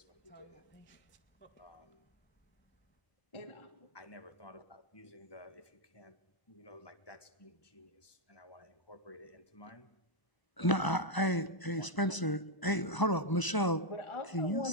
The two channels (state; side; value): late; right; 1.0 ms